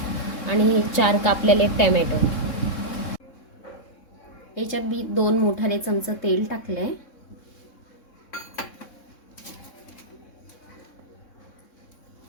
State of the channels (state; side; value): late; right; 3.6 ms